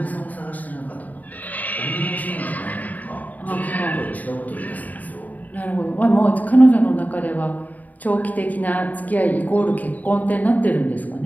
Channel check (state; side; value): late; right; 0.077 ms